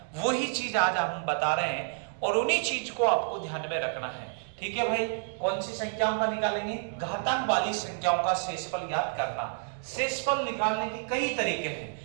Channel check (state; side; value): silent; left; 58 dB below the other